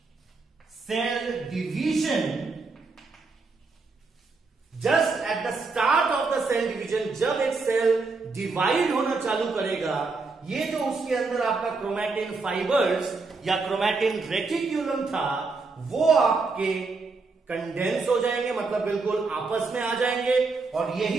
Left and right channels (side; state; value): left; quieter; 4.0 dB